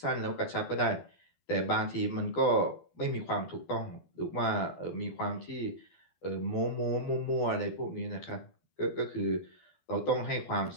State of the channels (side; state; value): right; late; 12 ms